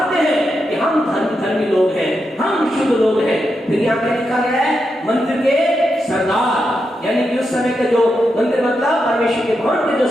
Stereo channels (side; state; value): both; normal; correlation 0.85